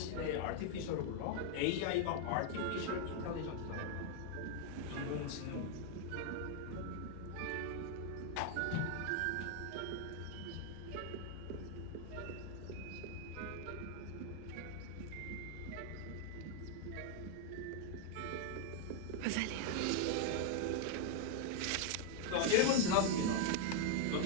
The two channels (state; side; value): different; both; correlation 0.00